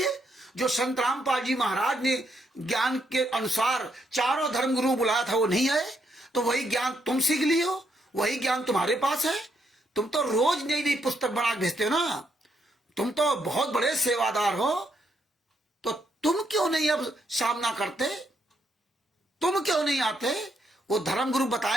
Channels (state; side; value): normal; both; correlation 0.76